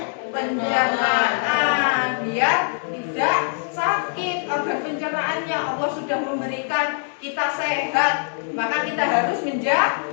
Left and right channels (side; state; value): right; silent; 58 dB below the other